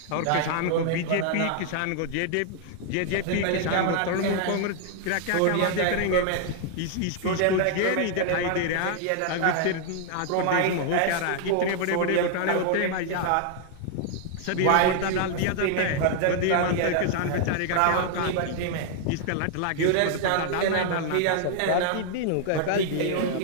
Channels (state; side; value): different; both; correlation 0.00